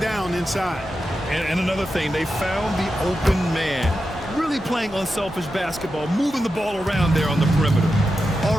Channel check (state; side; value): normal; both; correlation 0.90